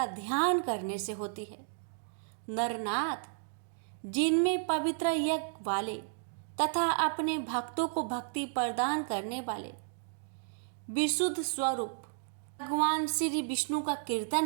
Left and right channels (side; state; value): left; silent; digital silence